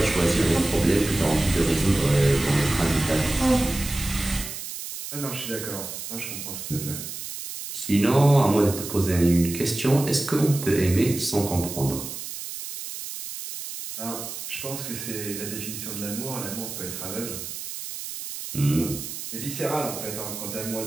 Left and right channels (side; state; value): right; noise; hiss, 8 dB below the sound